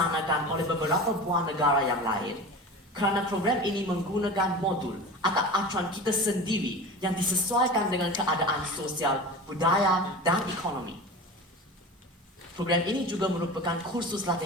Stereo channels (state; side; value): normal; both; correlation 0.32